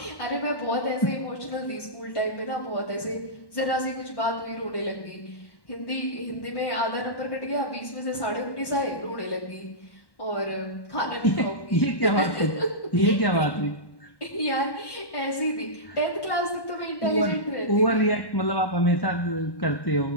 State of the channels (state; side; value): late; right; 1.1 ms